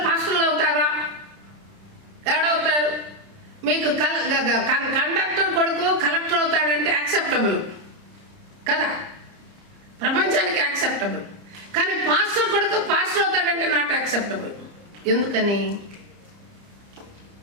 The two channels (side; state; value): left; late; 30 ms